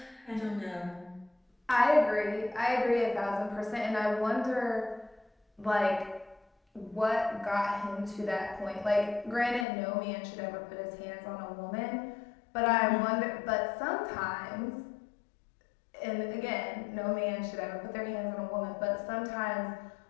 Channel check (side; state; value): right; drops out; at 9.7 s